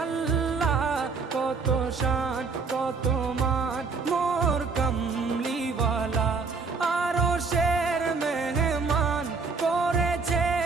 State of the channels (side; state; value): left; quieter; 4.6 dB